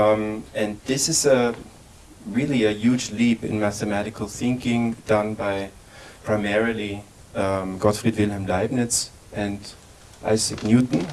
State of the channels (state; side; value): identical; both; correlation 1.00